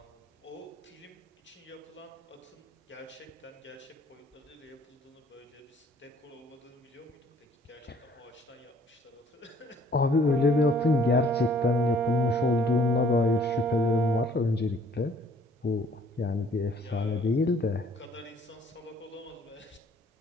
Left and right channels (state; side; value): normal; both; correlation 0.59